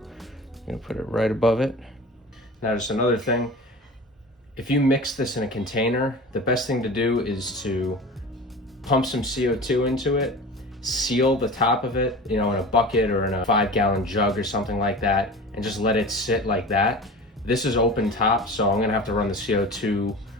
I'm gonna put it right above it. Now just another thing, if you mix this in a container, the best thing to do is to pump some CO2 into it, seal the top of it, in a bucket or in a 5-gallon jug or something like that, and just let it sit like that. This is open top, so I'm gonna have to run the CO2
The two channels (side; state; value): both; normal; correlation 0.35